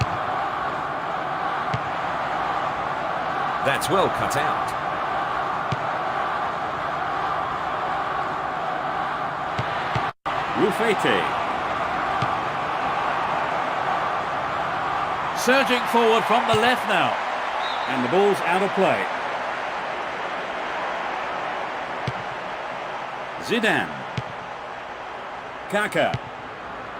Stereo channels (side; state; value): both; identical; correlation 1.00